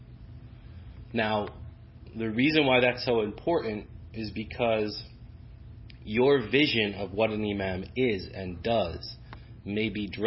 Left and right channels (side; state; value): both; identical; correlation 1.00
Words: Now, the reason why that's so important is because your vision of what an imam is and does may be